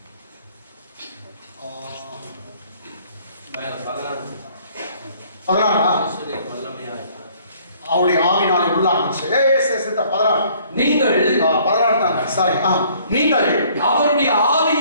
அவருடைய ஆவினாலே உள்ளாச்சு. நீங்கள் 16 தாங்க. சாரி. நீங்கள் அவருடைய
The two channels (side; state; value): both; inverted; correlation -0.59